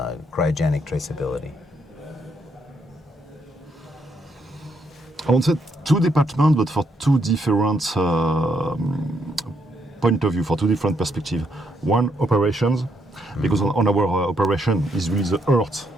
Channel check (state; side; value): normal; both; correlation 0.75